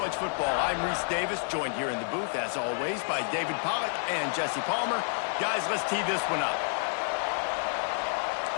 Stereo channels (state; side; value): silent; right; digital silence